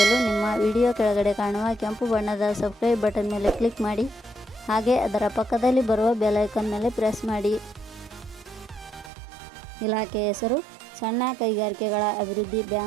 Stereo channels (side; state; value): left; drops out; at 9.1 s